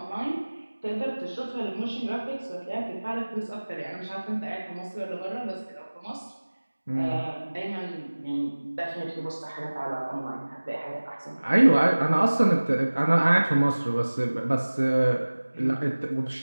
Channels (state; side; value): inverted; both; correlation -1.00